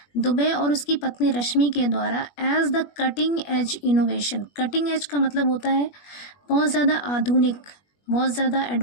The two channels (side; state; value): right; late; 21 ms